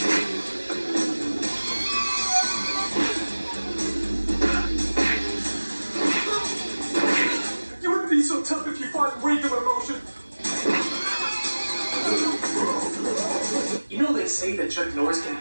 You wouldn't be so tough if you fought in regular motion. You know they say that Chuck Norris can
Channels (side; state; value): both; inverted; correlation -1.00